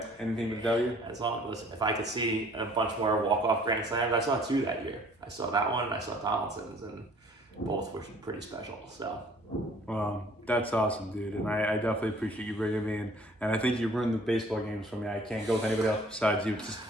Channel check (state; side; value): normal; both; correlation 0.55